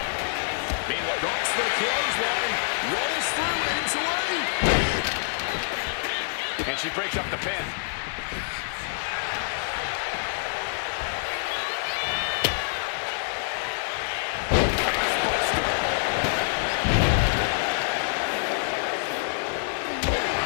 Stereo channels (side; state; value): right; silent; 61 dB below the other